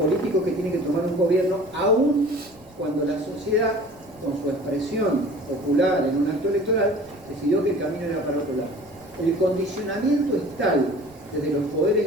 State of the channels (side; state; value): left; noise; rumble, 26 dB below the sound